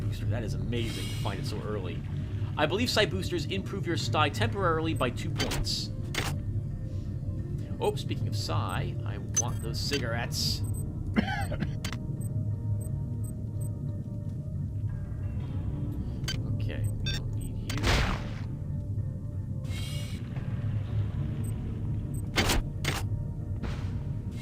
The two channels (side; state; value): both; identical; correlation 1.00